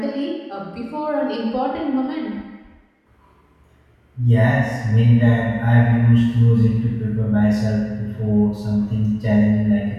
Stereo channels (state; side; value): identical; both; correlation 1.00